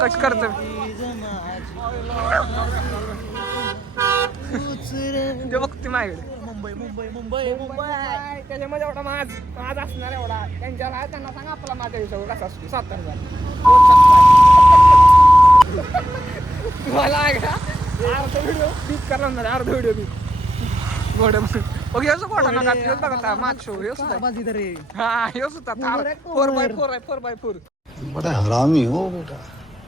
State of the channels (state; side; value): normal; both; correlation 0.80